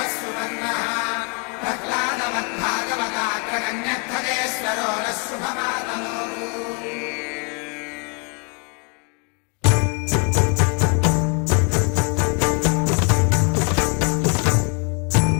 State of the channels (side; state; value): right; quieter; 36.4 dB